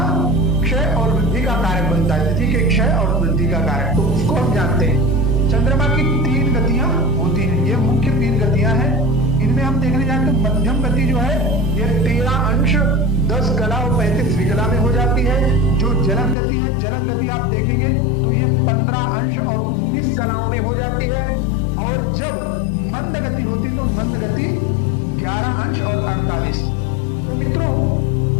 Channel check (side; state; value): right; drops out; at 16.4 s